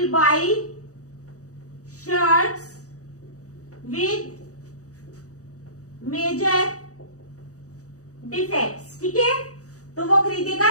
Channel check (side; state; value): right; late; 0.66 ms